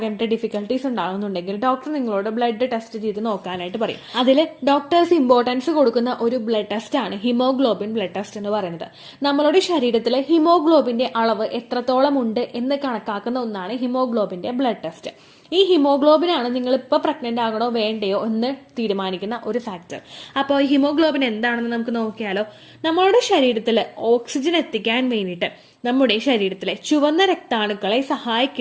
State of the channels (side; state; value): both; identical; correlation 1.00